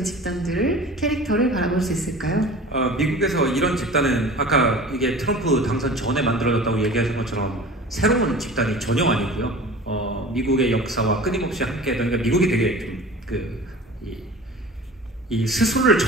집단들을 캐릭터를 바라볼 수 있을까요? 미국에서 이런 집단은 아까 이게 트럼프 당선 전에 만들어졌다고 얘기하신 것처럼 새로운 집단이 전혀 아니고요. 미국의 역사와 끊임없이 함께했던 그러니까 미국이 되게 좀 이 스스로를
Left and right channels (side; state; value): both; normal; correlation 0.39